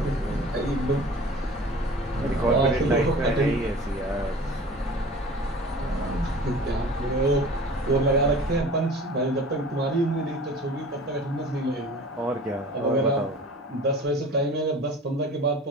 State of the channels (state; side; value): normal; both; correlation 0.42